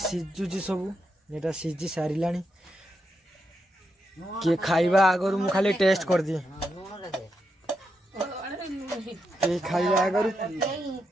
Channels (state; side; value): normal; both; correlation 0.84